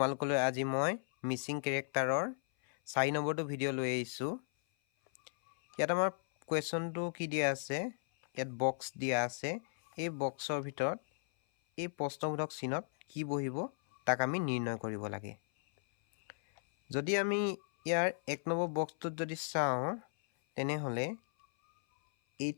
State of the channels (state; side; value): silent; right; 54 dB below the other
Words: আজি মই মিচিং কেৰেক্টাৰৰ 4 নম্বৰটো ভিডিঅ' লৈ আহিছোঁ। ইয়াত আমাৰ কুৱেশ্যনটো কি দিয়া আছে, ইয়াত বক্স দিয়া আছে। এই বক্সৰ ভিতৰত এই প্ৰশ্নবোধক চিহ্নত কি বহিব তাক আমি নিৰ্ণয় কৰিব লাগে। যদি আমি ইয়াৰ 1 নম্বৰ বক্সটোত যদি চাওঁ, তেনেহ'লে